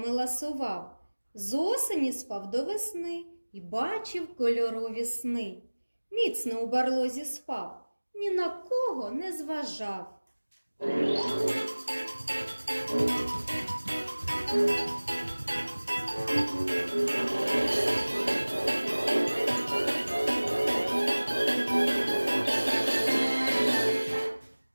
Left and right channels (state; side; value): inverted; both; correlation -1.00